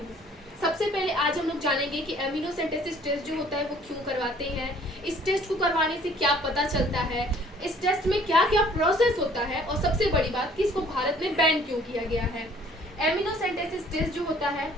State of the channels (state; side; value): normal; both; correlation 0.56